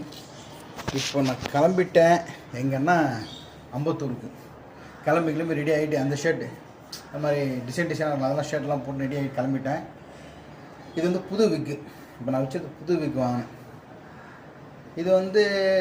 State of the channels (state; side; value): identical; both; correlation 1.00